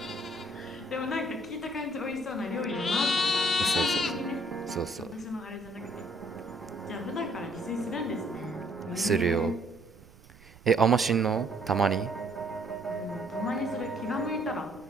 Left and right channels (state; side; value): noise; right; rumble, 24 dB below the sound